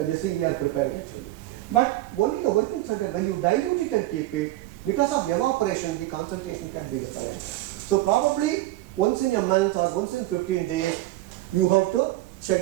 this thing we are preparing actually. But only the working standard, when you dilute it and keep it, because of evaporation, the concentration can be different. So probably once in a month or once in 15 days, you have to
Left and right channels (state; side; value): quieter; left; 16.8 dB